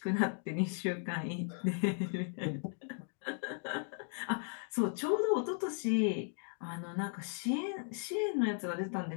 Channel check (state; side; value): silent; right; 53 dB below the other